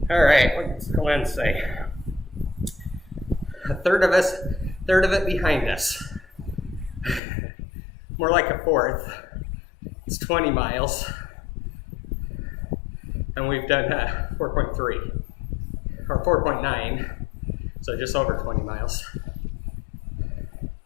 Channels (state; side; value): drops out; right; at 7.2 s